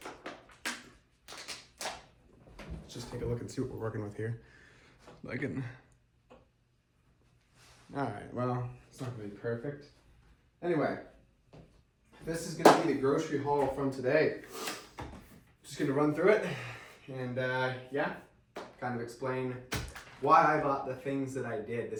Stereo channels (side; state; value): both; identical; correlation 1.00